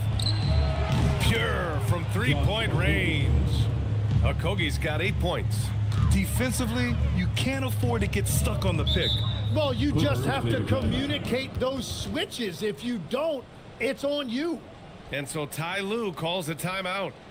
Pure from 3-point range. Okogie's got 8 points. Defensively, you can't afford to get stuck on the pick. Well, you just have to communicate those switches. If you don't, it's on you. And so Ty Lue calls a timeout.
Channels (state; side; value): identical; both; correlation 1.00